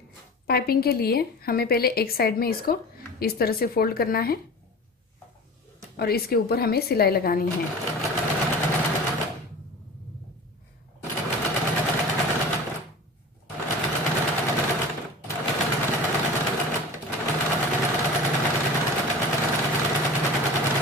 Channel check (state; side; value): normal; both; correlation 0.36